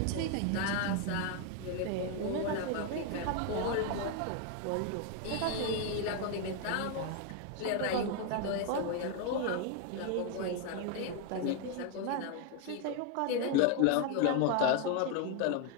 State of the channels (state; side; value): different; both; correlation 0.01